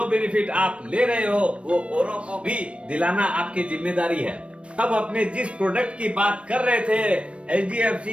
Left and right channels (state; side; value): late; left; 0.060 ms